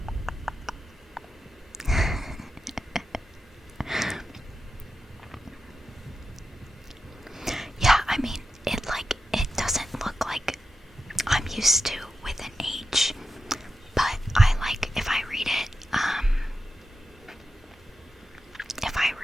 Yeah, I mean, it doesn't look like I'm used to with an H, but I like if I read it,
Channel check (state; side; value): normal; both; correlation 0.90